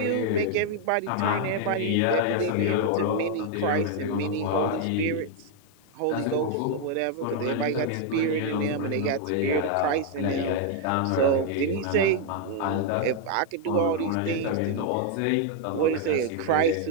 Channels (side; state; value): both; different; correlation 0.00